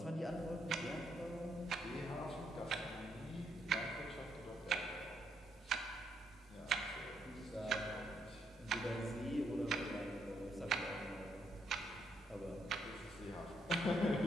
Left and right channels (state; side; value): normal; both; correlation 0.75